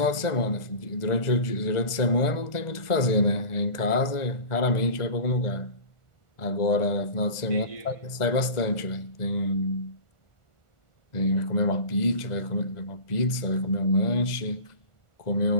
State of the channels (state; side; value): late; right; 1.4 ms